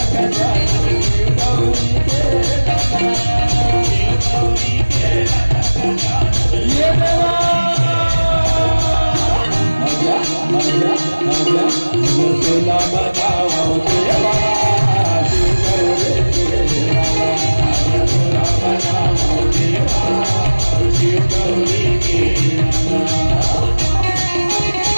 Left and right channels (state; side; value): inverted; both; correlation -1.00